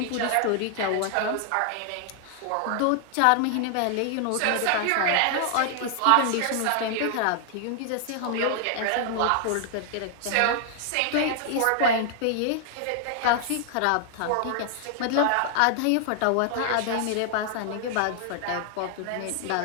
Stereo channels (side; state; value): both; different; correlation 0.00